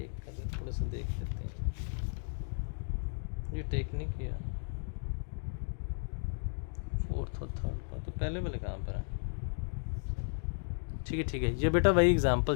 कर थोड़ा सा देख लेते हैं, ये टेक नहीं किया, 4th और 3rd पर, तो पहले वाले कहाँ पर है, ठीक है ठीक है, ये बेटा वही एग्जाम्पल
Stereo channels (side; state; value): right; silent; digital silence